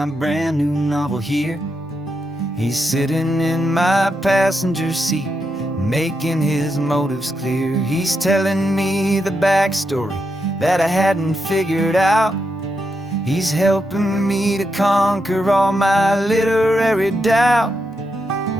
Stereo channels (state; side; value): normal; both; correlation 0.84